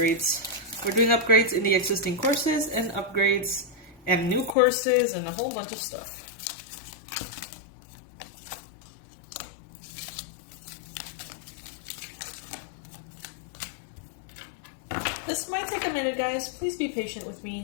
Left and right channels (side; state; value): right; drops out; at 4.5 s